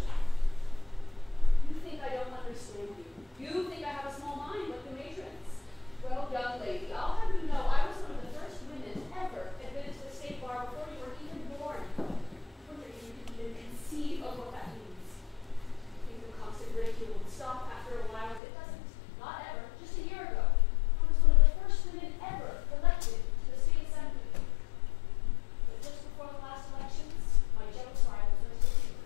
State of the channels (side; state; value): right; drops out; at 18.4 s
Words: You think I don't understand you. You think I have a small mind like the matrons. Well, young lady, I'll have you know I was one of the first women ever admitted to the state bar before you were even born. I wonder if you can even conceive of what that means. I think the constant ridicule would stop after a while. It doesn't. Not ever. Just a year ago. I was one of the first women ever elected to the state assembly. But just before the last elections, my jealous rivals